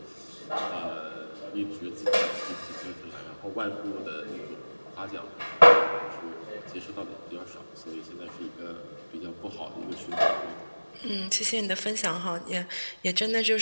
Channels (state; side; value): inverted; both; correlation -1.00